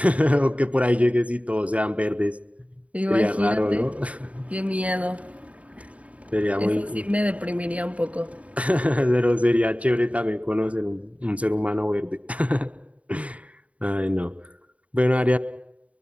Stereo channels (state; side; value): late; left; 0.066 ms